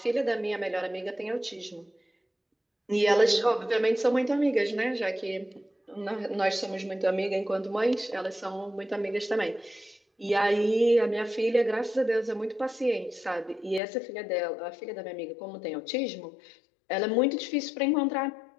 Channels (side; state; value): right; drops out; at 13.8 s